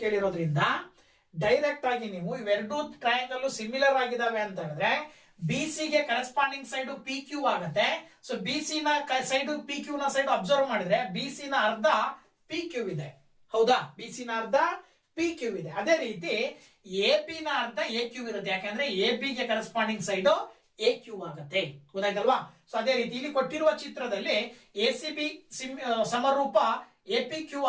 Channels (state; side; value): identical; both; correlation 1.00